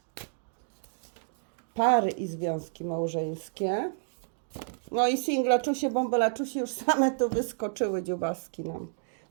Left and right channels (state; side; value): silent; left; digital silence